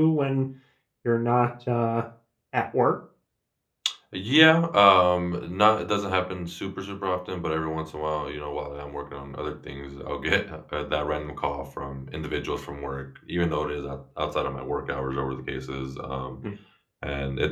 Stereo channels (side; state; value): both; identical; correlation 1.00